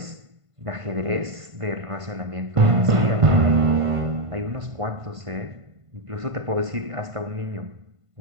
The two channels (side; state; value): left; late; 1.5 ms